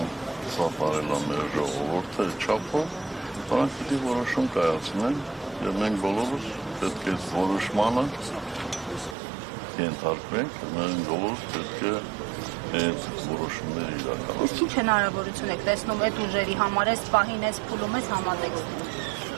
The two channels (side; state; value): left; drops out; at 9.2 s